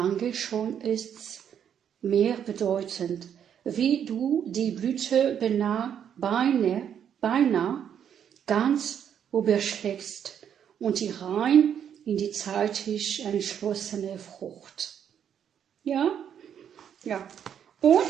schon ist's mehr bedeutend, wie du die Blüte beinahe ganz überschlägst und die rein in die zeitig entschlossene Frucht. Ja? Ja.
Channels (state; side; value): quieter; left; 8.8 dB